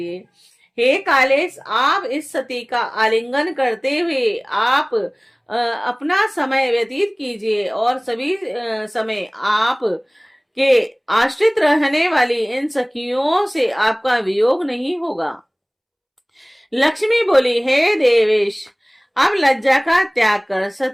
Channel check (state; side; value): identical; both; correlation 1.00